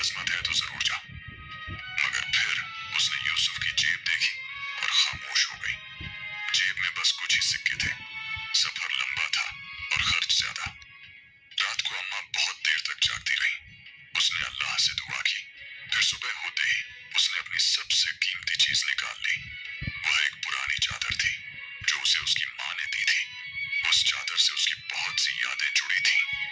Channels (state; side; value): identical; both; correlation 1.00